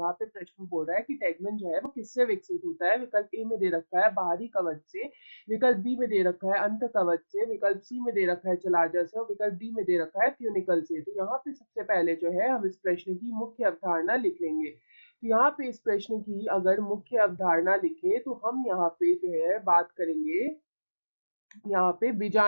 पे प्रश्न बोल रहा है कि टेगमेन जो है वो किससे विकसित होता है। विकल्प ए में दे रखा है बाहरी कवच से, विकल्प बी में दे रखा है अंत कवच से, विकल्प सी में दे रखा है जलाजा से और विकल्प डी में दे रखा है ट्यूनिकल से। तो यहाँ पे सबसे पहले जो है हम इस प्रश्न की मुख्य अवधारणा लिख लेंगे। तो यहाँ पे इस प्रश्न की अगर मुख्य अवधारणा लिखे तो हम यहाँ पे जो है बात करेंगे यहाँ पे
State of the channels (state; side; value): inverted; both; correlation -1.00